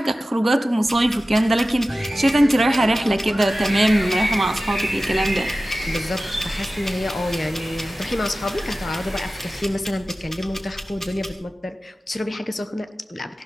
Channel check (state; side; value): normal; both; correlation 0.95